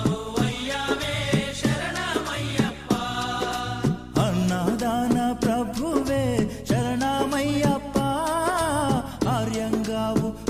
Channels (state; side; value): identical; both; correlation 1.00